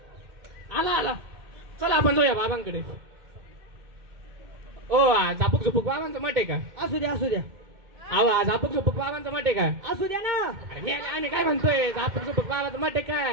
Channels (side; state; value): left; late; 2.1 ms